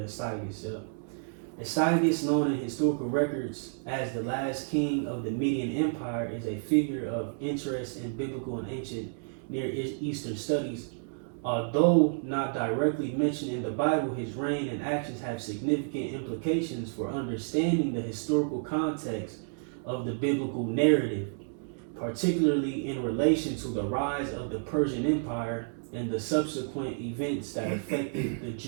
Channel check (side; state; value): left; silent; digital silence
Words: Astyages, known in historical records as the last king of the Median Empire, is a figure of interest in biblical and ancient Near Eastern studies. Although not directly mentioned in the Bible, his reign and actions have significant implications for understanding the historical context of the biblical narrative, particularly in relation to the rise of the Persian Empire and the subsequent events that affected the